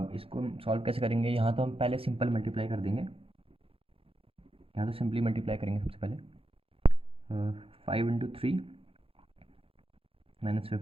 इसको हम सॉल्व कैसे करेंगे। यहाँ तो हम पहले सिंपल मल्टीप्लाई कर देंगे। यहाँ तो सिंपली मल्टीप्लाई करेंगे सबसे पहले। 5 × 3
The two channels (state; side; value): late; left; 0.27 ms